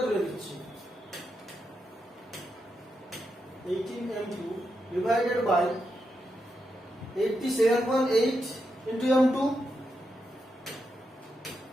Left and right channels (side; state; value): both; normal; correlation 0.85